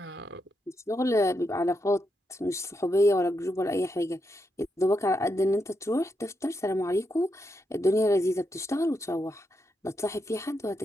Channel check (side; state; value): both; normal; correlation 0.83